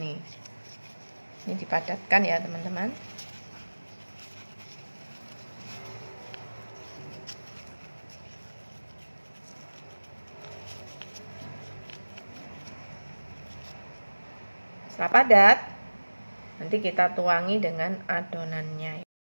Ini dipadatkan ya teman-teman. Setelah padat, nanti kita tuangi dengan adonannya.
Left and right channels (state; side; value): inverted; both; correlation -1.00